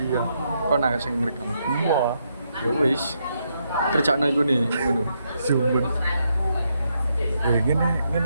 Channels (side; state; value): both; inverted; correlation -0.79